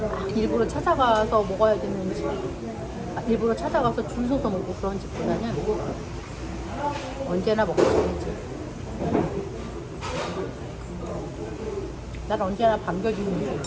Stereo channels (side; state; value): both; identical; correlation 1.00